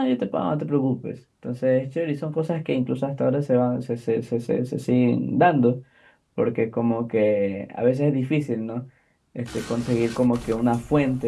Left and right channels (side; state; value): both; identical; correlation 1.00